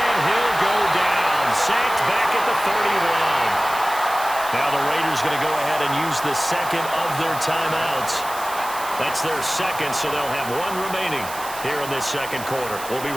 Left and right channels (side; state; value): right; noise; hiss, 12 dB below the sound